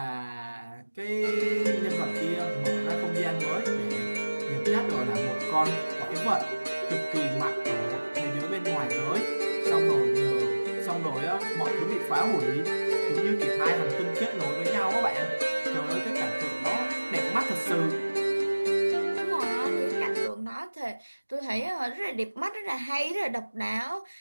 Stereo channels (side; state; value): both; inverted; correlation -1.00